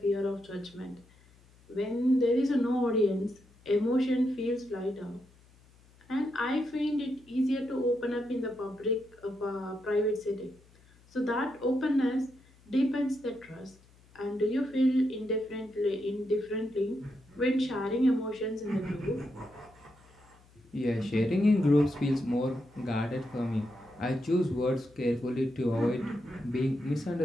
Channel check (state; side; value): noise; left; hum, 28 dB below the sound